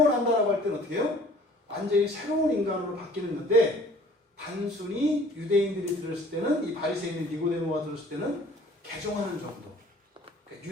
난다라고 할 때는 어떻게 해요? 완전히 새로운 인간으로 바뀌는 건데 단순히 유대인들이 들었을 때는 이 바리새인인 니고데모가 들었을 때는 개종하는 정도. 그러니까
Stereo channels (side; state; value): both; normal; correlation 0.52